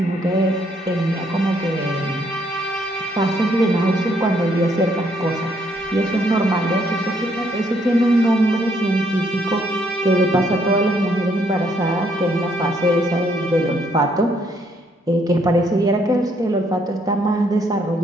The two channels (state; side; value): normal; both; correlation 0.70